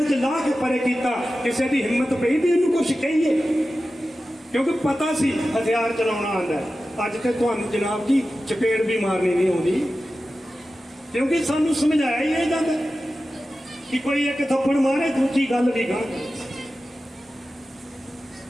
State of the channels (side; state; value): both; normal; correlation 0.94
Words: 'ਚ ਲਾ ਕੇ ਪਰੇ ਕੀਤਾ। ਕਿਸੇ ਦੀ ਹਿੰਮਤ ਪਈ ਵੀ ਇਹਨੂੰ ਕੁਛ ਕਹੀਏ, ਕਿਉਂਕਿ ਪਤਾ ਸੀ ਹਥਿਆਰ ਚਲਾਉਣਾ ਆਉਂਦਾ। ਅੱਜ ਤੇ ਤੁਹਾਨੂੰ ਜਨਾਬ ਜੀ ਚਪੇੜ ਵੀ ਮਾਰਨੀ ਨਹੀਂ ਆਉਂਦੀ, ਕਿਉਂਕਿ ਸਾਨੂੰ ਸਮਝਾਇਆ ਹੀ ਇਹ ਜਾਂਦਾ ਕਿ ਕੋਈ ਇੱਕ ਥੱਪੜ ਮਾਰੇ, ਦੂਜੀ ਗੱਲ ਵੀ ਗਾਂ।